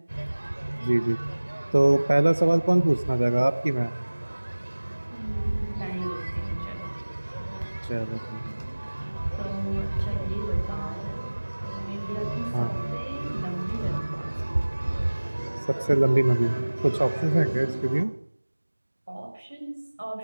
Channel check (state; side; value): inverted; both; correlation -1.00